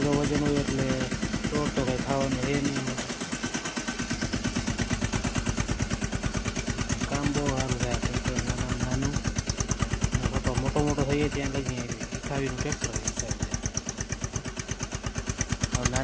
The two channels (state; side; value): identical; both; correlation 1.00